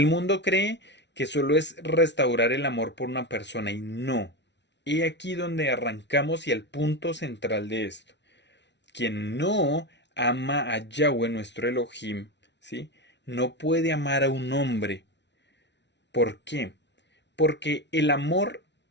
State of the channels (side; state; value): right; late; 0.51 ms